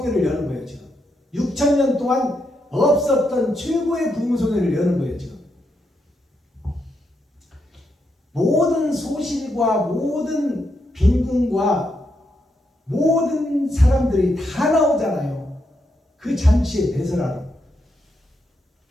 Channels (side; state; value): both; normal; correlation 0.81